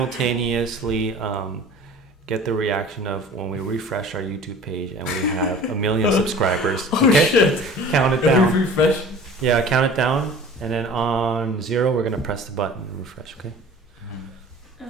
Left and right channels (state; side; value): normal; both; correlation 0.43